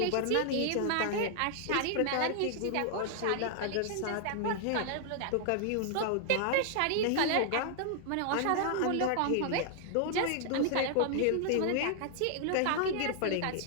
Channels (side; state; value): both; different; correlation 0.00